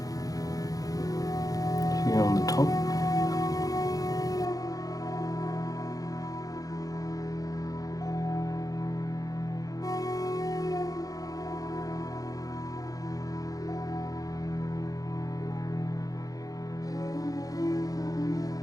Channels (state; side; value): late; right; 0.17 ms